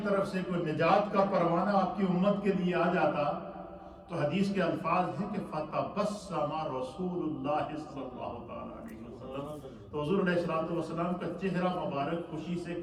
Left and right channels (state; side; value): identical; both; correlation 1.00